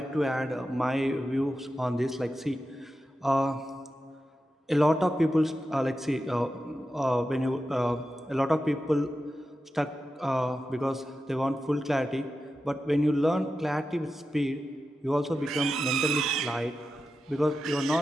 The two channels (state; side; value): normal; both; correlation 0.90